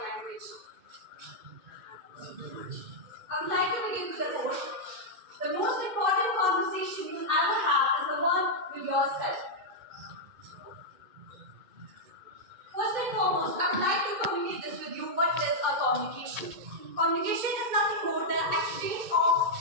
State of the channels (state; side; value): late; left; 2.1 ms